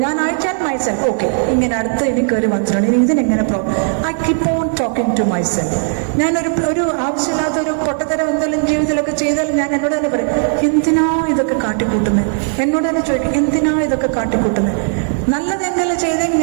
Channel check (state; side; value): silent; left; digital silence